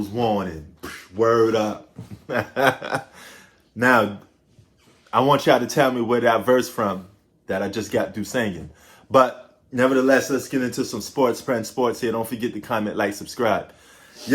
warning. Word up. Now, I want y'all to tell me where that verse from that I just got through singing. But nevertheless, let's get into some sports, friend sports here. Don't forget to comment, like, subscribe.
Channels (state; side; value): identical; both; correlation 1.00